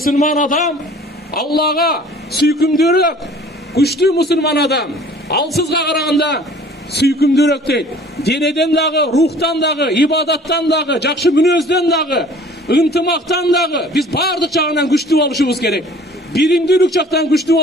адам Аллага сүйкүмдүүрөөк, күчтүү мусулман адам алсызга караганда сүйкүмдүүрөөк дейт. Денеден дагы, рухтан дагы, ибадаттан дагы, жакшы мүнөздөн дагы, ынтымактан дагы биз баардык жагынан күчтүү болушубуз керек. Биримдүүлүк жактан күчтүү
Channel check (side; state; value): both; normal; correlation 0.50